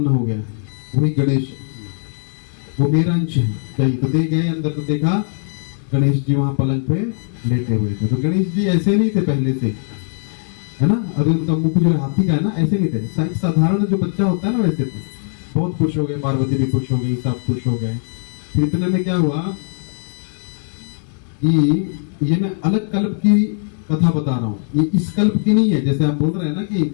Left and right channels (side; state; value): right; silent; digital silence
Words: हो गया, वही गणेश, वो मेरा अंश है, चाहिए। तो दे गए अंदर, तो देखा गणेश जी वहां पलंग पे लेटे हुए थे। तो गणेश जी ऐसे नहीं थे पहले से, है ना। अभी उनका मुख जो हाथी का है ना, ऐसे नहीं थे, साधारण जो बच्चा होता है ना वैसे थे। बहुत खुश हो गए, पार्वती भी खुश हो गई, सब खुश हो गए। फिर इतने में क्या हुआ कि ये मैं अलग कल्प की कथा बता रहा हूँ, ये इस कल्प की नहीं है। जैसे आप बोल रहे हैं ना कि